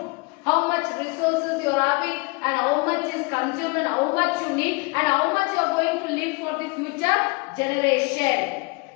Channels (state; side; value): quieter; right; 27.9 dB